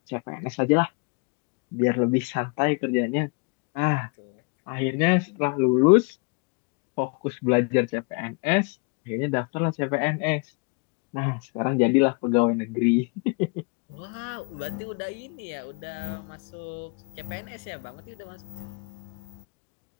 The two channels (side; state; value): right; quieter; 33.8 dB